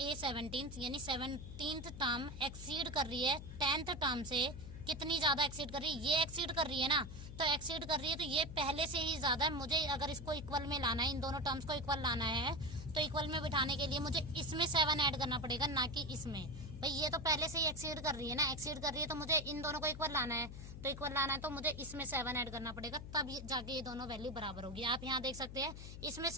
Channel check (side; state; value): left; noise; hum, 11 dB below the sound